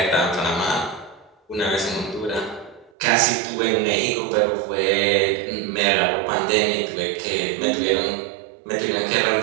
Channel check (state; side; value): drops out; left; at 2.9 s